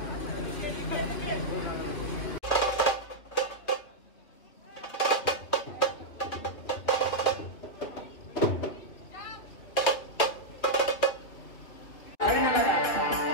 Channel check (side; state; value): right; late; 2.6 ms